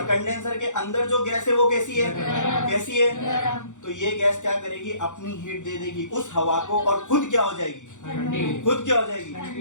कंडेंसर के अंदर जो गैस है वो कैसी है? गरम। कैसी है? गरम। तो ये गैस क्या करेगी? अपनी हीट दे देगी उस हवा को और खुद क्या हो जाएगी? ठंडी। खुद क्या हो जाएगी?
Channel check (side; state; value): right; late; 0.85 ms